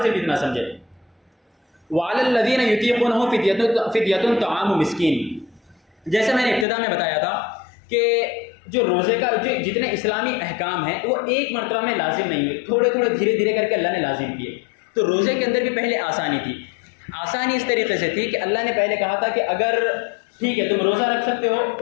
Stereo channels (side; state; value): right; drops out; at 6.7 s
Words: صرف اتنا سمجھیں، وعلی الذین یطیقونہ فدیۃ طعام مسکین، جیسے میں نے ابتدا میں بتایا تھا کہ جو روزے کا جو جتنے اسلامی احکام ہیں وہ ایک مرتبہ میں لازم نہیں ہوئے، تھوڑے تھوڑے دھیرے دھیرے کر کے اللہ نے لازم کیے۔ تو روزے کے اندر بھی پہلے آسانی تھی، آسانی اس طریقے سے تھی کہ اللہ نے پہلے کہا تھا کہ اگر ٹھیک ہے تم روزہ رکھ سکتے ہو